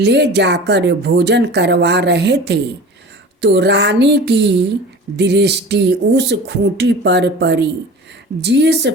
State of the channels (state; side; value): normal; both; correlation 0.38